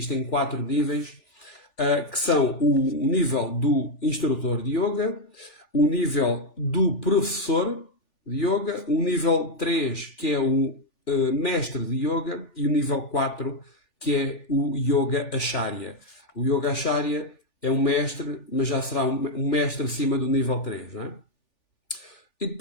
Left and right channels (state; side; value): late; right; 3.4 ms